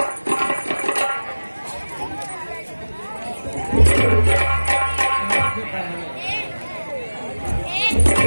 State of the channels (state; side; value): inverted; both; correlation -1.00